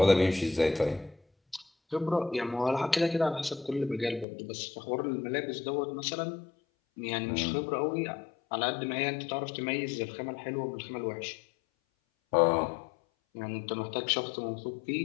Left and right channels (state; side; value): drops out; right; at 4.2 s